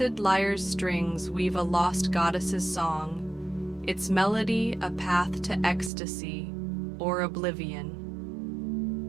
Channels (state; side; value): drops out; left; at 5.9 s